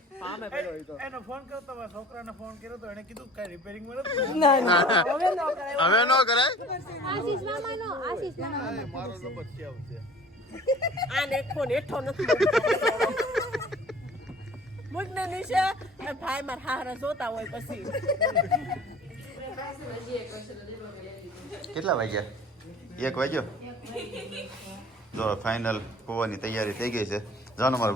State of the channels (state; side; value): normal; both; correlation 0.47